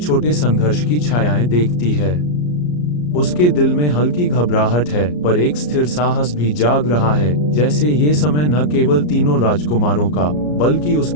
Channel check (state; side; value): late; right; 34 ms